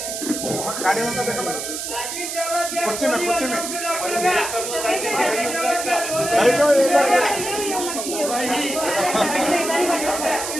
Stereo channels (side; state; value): right; noise; hiss, 5 dB below the sound